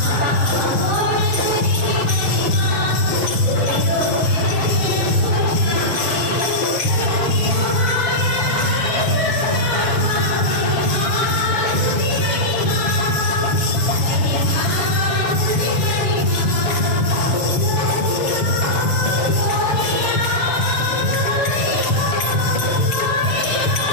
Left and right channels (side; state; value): right; late; 6.8 ms